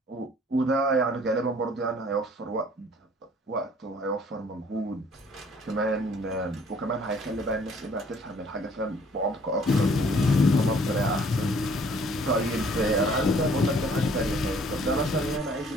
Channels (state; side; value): normal; both; correlation 0.58